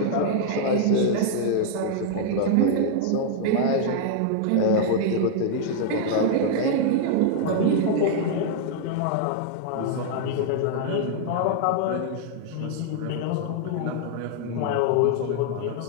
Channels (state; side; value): different; both; correlation -0.01